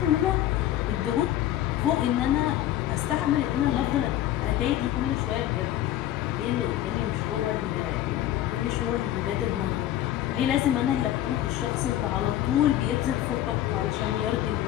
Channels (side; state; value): right; quieter; 12.8 dB